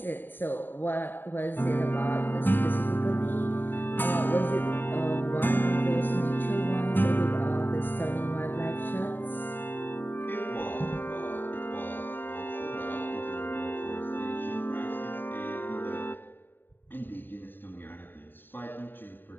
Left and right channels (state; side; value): late; right; 0.094 ms